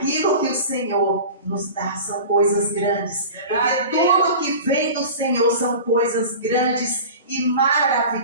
que o Senhor nos dá são coisas grandes. Porque tudo que vem do Senhor são coisas grandes e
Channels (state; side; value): inverted; both; correlation -0.35